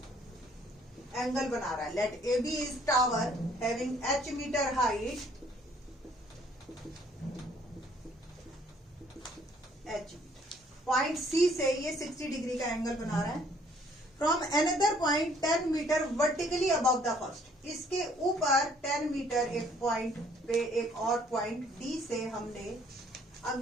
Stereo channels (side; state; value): both; normal; correlation 0.62